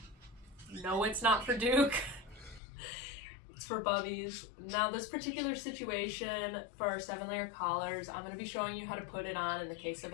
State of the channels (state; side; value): drops out; right; at 2.6 s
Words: No, it's not for Duke. It's for Bubbies. Now this particular situation for our 7-layer collars, I'm going to be showing you how to put it on in the case of